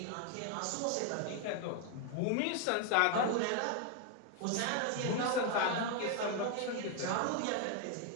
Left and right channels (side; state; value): both; different; correlation 0.01